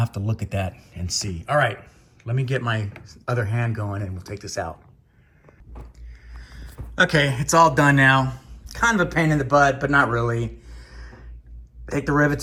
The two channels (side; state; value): both; identical; correlation 1.00